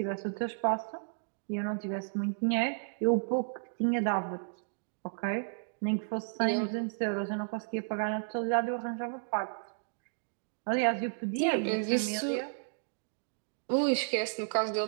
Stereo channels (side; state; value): left; silent; digital silence